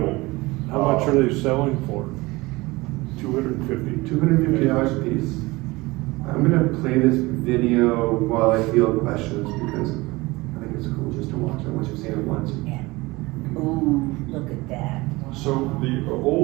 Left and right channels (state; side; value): quieter; left; 21.9 dB